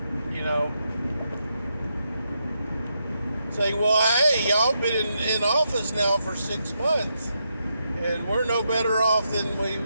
you know, saying, well, hey, y'all been in office now for 6 months, and we're no better off than we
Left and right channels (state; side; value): inverted; both; correlation -0.82